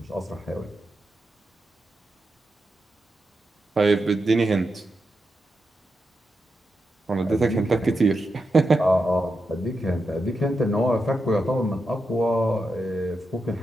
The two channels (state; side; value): normal; both; correlation 0.87